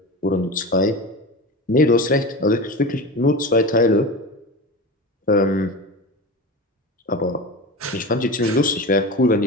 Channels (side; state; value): both; normal; correlation 0.28